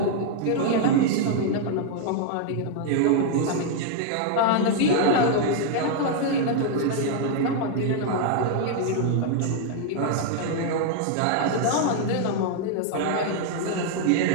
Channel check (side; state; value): both; different; correlation 0.00